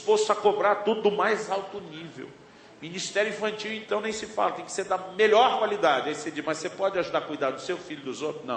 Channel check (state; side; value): identical; both; correlation 1.00